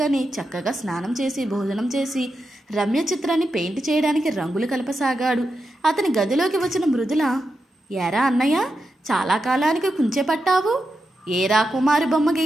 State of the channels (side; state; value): both; normal; correlation 0.88